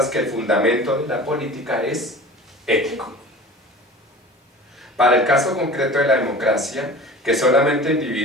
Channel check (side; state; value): both; normal; correlation 0.39